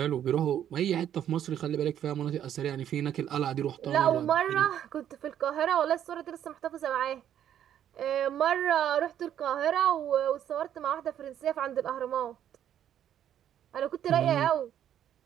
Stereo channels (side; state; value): left; quieter; 10.3 dB